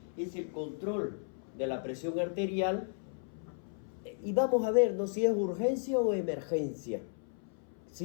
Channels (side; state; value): right; silent; 55 dB below the other